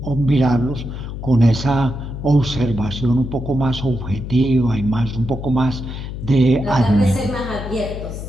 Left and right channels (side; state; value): left; noise; hum, 8 dB below the sound